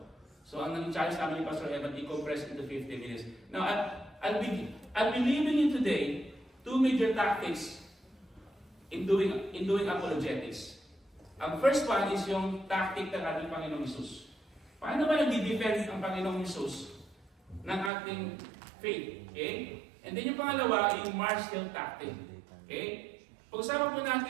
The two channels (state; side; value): drops out; left; at 17.9 s